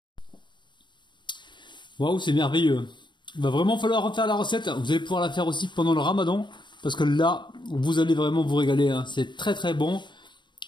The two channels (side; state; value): right; late; 0.22 ms